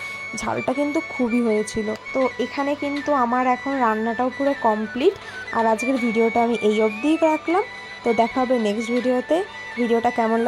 ঝালটা কিন্তু খুবই হয়েছিল। তো এখানে কিন্তু আমার এখন রান্নাটাও পুরো কমপ্লিট। আর আজকের ভিডিওটা আমি এই অবধিই রাখলাম। তো দেখা হবে নেক্সট ভিডিওতে। ভিডিওটা কেমন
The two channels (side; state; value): both; identical; correlation 1.00